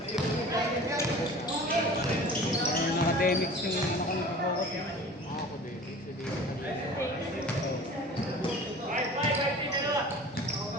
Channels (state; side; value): normal; both; correlation 0.42